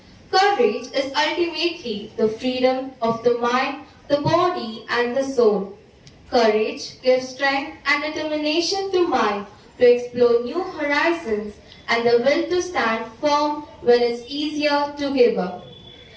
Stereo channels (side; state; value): both; identical; correlation 1.00